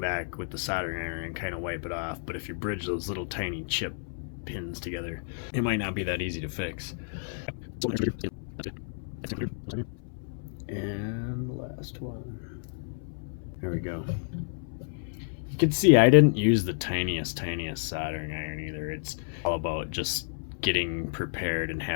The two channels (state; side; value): silent; right; 58 dB below the other